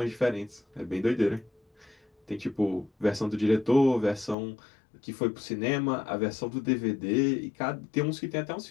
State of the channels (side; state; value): right; drops out; at 4.4 s